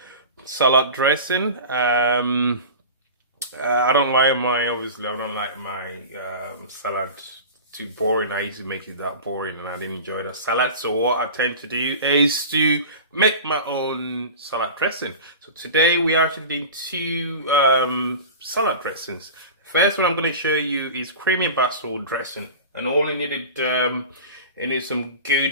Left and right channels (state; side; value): inverted; both; correlation -0.33